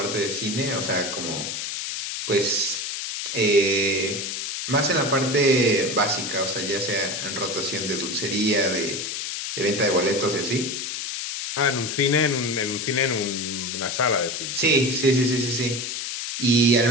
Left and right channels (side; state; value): left; noise; hiss, 4 dB below the sound